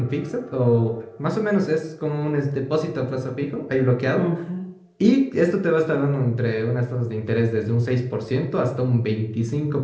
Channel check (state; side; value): identical; both; correlation 1.00